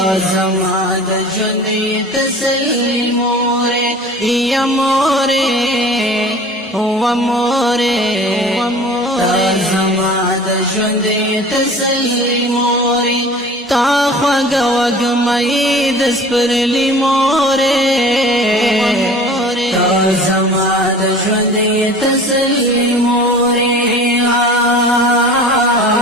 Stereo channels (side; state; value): both; normal; correlation 0.42